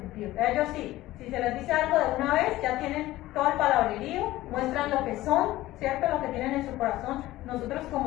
Ellos sí, si se les dice algo de una vez, ya tienen todo el palabrerío, muestran lo que son, ¿cierto? Lo que tienen en su corazón. Nosotros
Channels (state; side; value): quieter; right; 16.5 dB